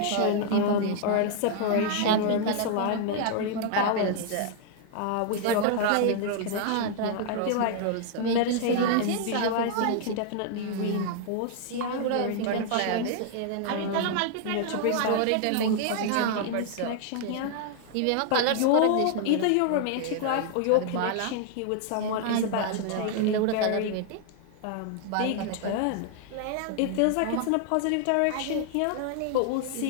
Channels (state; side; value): different; both; correlation 0.00